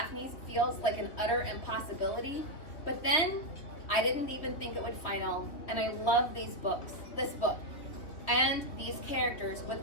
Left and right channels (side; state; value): right; late; 3.3 ms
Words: feels like an utter impossibility, but then I didn't even think it would final, and I love this book, and these characters with